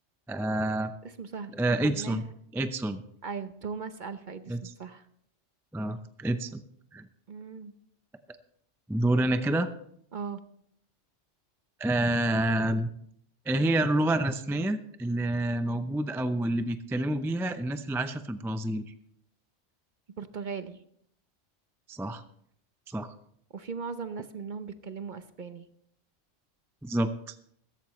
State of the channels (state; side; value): normal; both; correlation 0.77